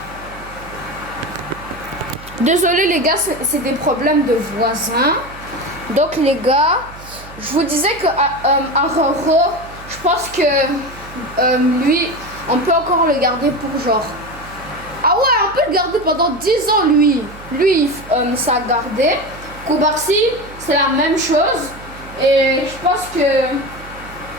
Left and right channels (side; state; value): right; noise; hum, 18 dB below the sound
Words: désolé les gars, c'est des problèmes de voisins. Donc les gars, je vous disais que Araujo, je pense que lui, on peut encore le garder pour genre. Ah ouais, on peut le garder pendant 10 ans, lui. Lui, ça a gardé. Koubarsi, c'est la même chose. Et je pense que